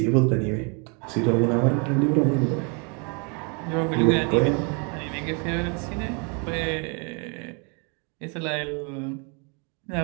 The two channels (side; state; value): left; quieter; 34.9 dB